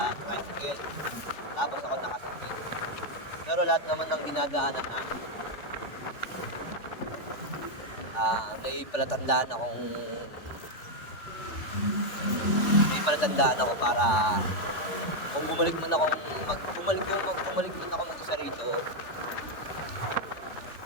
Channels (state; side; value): late; right; 3.4 ms